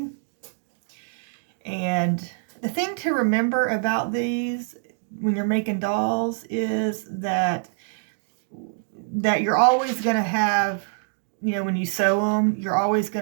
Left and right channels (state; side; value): silent; left; digital silence